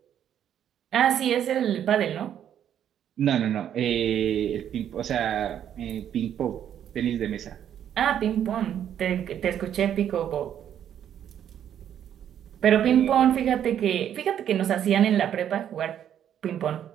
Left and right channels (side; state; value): left; quieter; 9.8 dB